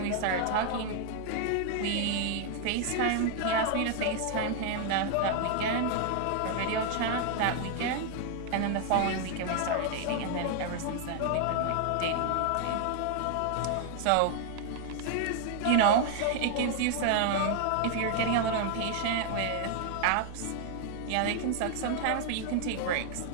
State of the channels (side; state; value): both; different; correlation 0.00